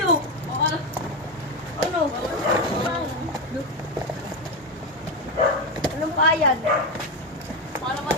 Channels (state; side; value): normal; both; correlation 0.12